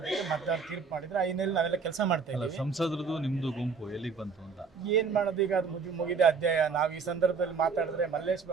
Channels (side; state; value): left; quieter; 5.3 dB